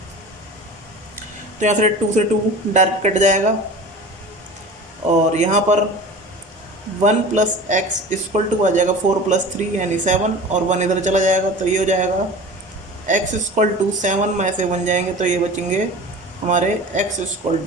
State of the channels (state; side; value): normal; both; correlation 0.37